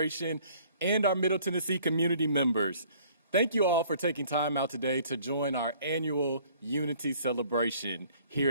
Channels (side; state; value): both; inverted; correlation -0.56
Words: and our Middle Tennessee community members. Thank you all for taking time out today to join our annual Unity celebration